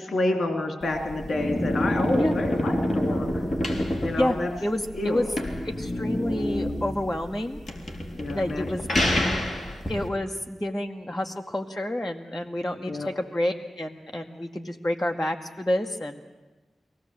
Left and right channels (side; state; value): both; normal; correlation 0.93